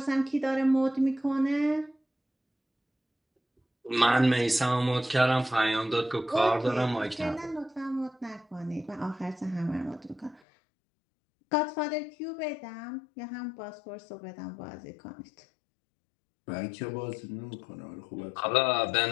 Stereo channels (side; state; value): right; drops out; at 10.4 s